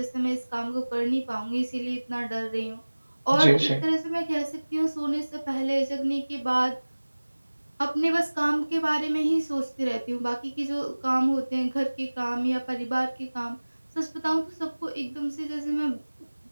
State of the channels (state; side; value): inverted; both; correlation -1.00